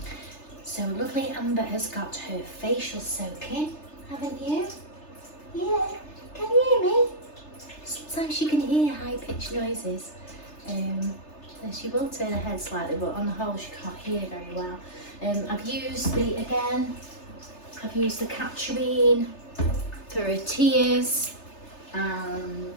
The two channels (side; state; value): right; late; 3.3 ms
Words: So lovely Amber has got her facial soaking, haven't you? Yeah, can you hear me? Sometimes you can hear high-pitched noises. And she will turn her head slightly, but on the whole she can't hear very well. I've used the Catcherine for her tears and